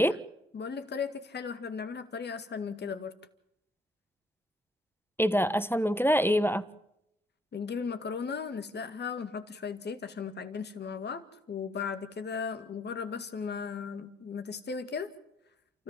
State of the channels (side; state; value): both; normal; correlation 0.70